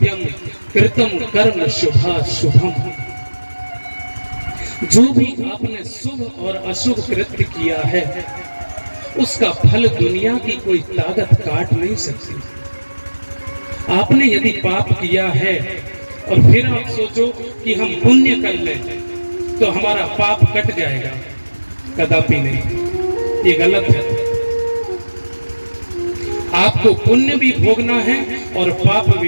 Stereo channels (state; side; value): inverted; both; correlation -1.00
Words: कृतम कर्म शुभाशुभम। जो भी आपने शुभ और अशुभ कृत्य किया है उसका फल दुनिया की कोई ताकत काट नहीं सकती। आपने यदि पाप किया है और फिर आप सोचो कि हम पुण्य कर लें तो हमारा पाप कट जाएगा, कदापि नहीं, ये गलत है। आपको पुण्य भी भोगना है और पाप